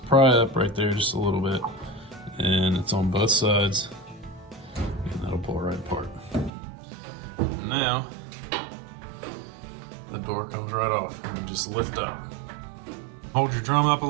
pry up right there just a little bit, and it's on both sides, and that'll pull right apart. Now the door comes right off, and just lift up. Hold your drum up a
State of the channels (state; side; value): drops out; left; at 6.5 s